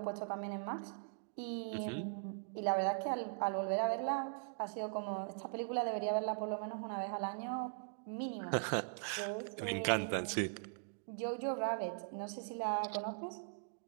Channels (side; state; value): left; silent; digital silence